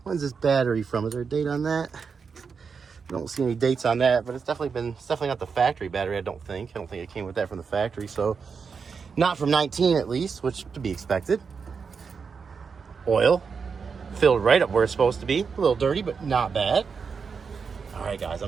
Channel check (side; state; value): left; quieter; 5.7 dB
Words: when's this battery from? Is there a date on that? I don't see any dates on that, but it's definitely not the factory battery, I don't think it came with that from the factory. So not from 19 at least, which to be expected. Oil filled right up where it's supposed to be. A little dirty, but not bad. All right, guys,